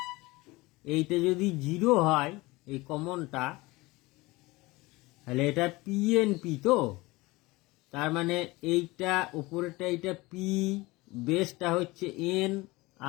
এইটা যদি 0 হয়, এই কমনটা, তাহলে এটা পিএনপি তো। তার মানে এইটা উপরেটা এইটা পি, বেসটা হচ্ছে এন,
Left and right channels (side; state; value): right; quieter; 21.7 dB